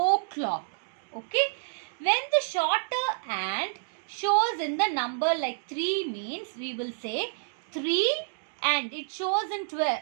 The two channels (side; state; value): left; silent; digital silence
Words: Okay, when the shorter hand shows in the number like 3 means we will say 3 and it shows in 12,